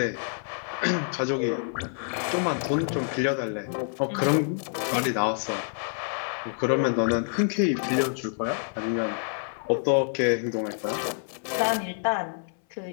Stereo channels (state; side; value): silent; right; 57 dB below the other